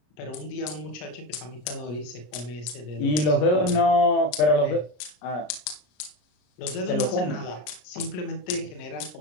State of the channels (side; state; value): right; late; 33 ms